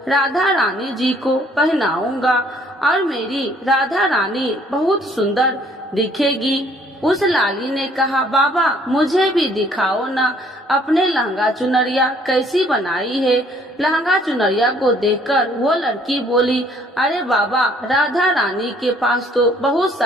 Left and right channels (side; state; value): both; normal; correlation 0.61